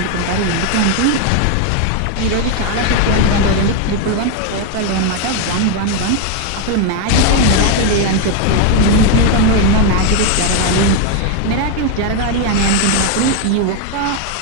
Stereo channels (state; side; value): different; both; correlation 0.01